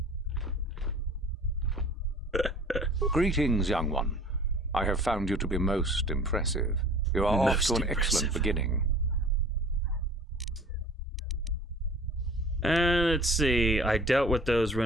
Greetings, young one. I have found you to be most impressive. You are off to an excellent beginning. Let's see. I dealt with those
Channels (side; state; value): both; normal; correlation 0.46